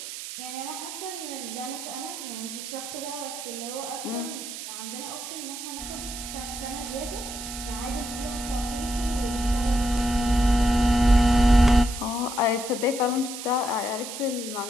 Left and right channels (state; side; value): noise; right; hiss, 9 dB below the sound